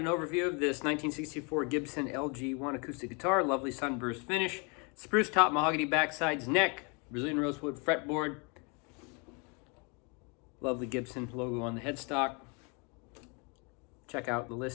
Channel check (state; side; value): quieter; right; 32.6 dB